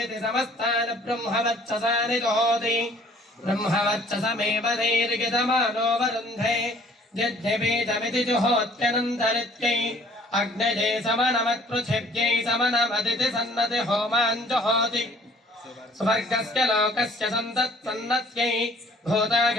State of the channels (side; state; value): both; normal; correlation 0.56